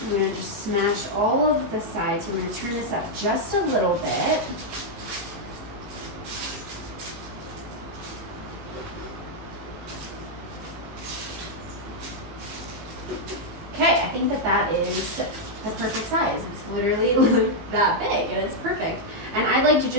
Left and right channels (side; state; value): left; late; 19 ms